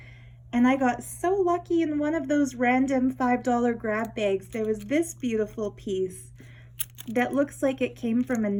And I got so lucky in one of those random $5 grab bags. There was this beautiful piece that looks like it came from a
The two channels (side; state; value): both; identical; correlation 1.00